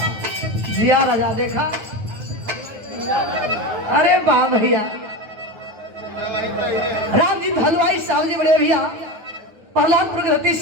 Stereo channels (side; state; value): left; late; 9.4 ms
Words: जिया राजा देखा, अरे वाह भैया रामजीत हलवाई साहब जी बड़े भैया प्रहलाद प्रगति